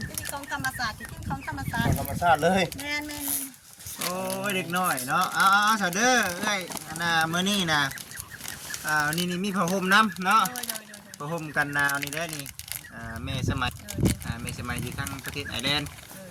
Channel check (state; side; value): identical; both; correlation 1.00